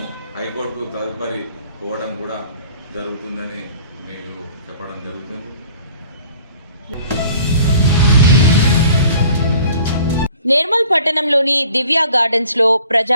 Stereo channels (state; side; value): inverted; both; correlation -0.52